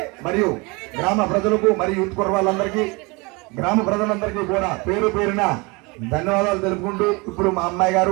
మరియు గ్రామ ప్రజలకు మరియు యూత్ కుర్రాళ్ళందరికీ, గ్రామ ప్రజలందరికీ కూడా పేరు పేరున ధన్యవాదాలు తెలుపుకుంటూ, ఇప్పుడు మా అమ్మాయి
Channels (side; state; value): left; quieter; 27.1 dB